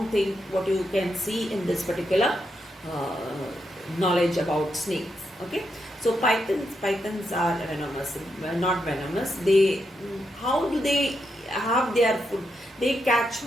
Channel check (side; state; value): both; normal; correlation 0.83